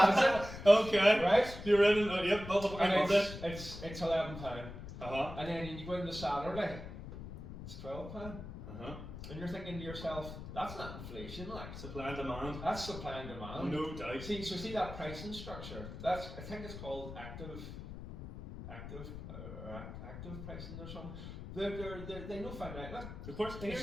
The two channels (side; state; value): left; noise; rumble, 10 dB below the sound